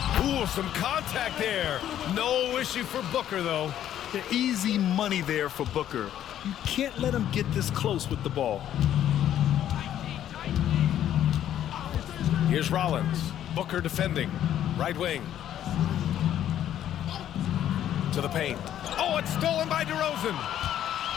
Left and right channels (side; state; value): right; quieter; 11.1 dB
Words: Ooh, some contact there. No issue for Booker, though. The easy money there for Booker. You can't let him get this close with the ball. Here's Rollins. Booker defending. Right wing. To the paint. Oh, it's stolen by DeRozan.